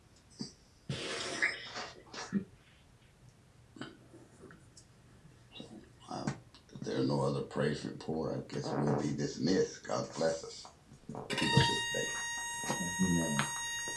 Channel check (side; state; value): both; identical; correlation 1.00